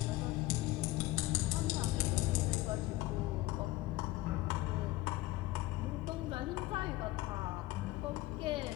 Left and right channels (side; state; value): right; quieter; 18.0 dB